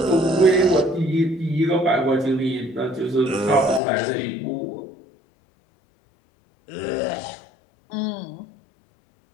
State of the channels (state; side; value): drops out; right; at 3.8 s